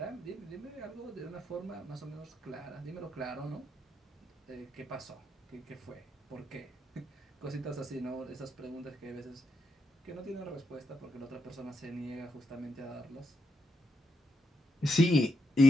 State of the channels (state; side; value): normal; both; correlation 0.82